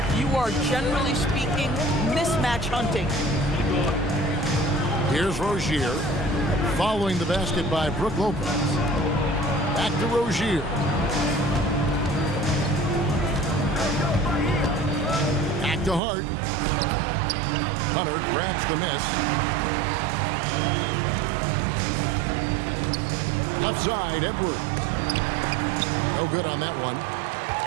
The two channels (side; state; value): left; drops out; at 16.0 s